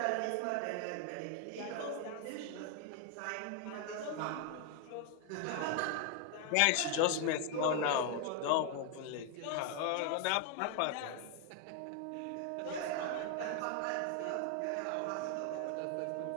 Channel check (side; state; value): both; different; correlation 0.00